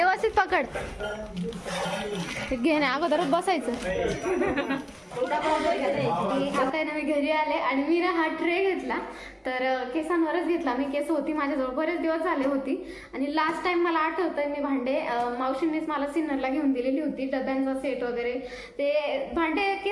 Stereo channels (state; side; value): identical; both; correlation 1.00